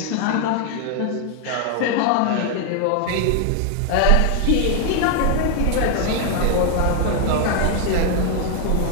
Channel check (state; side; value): different; both; correlation 0.00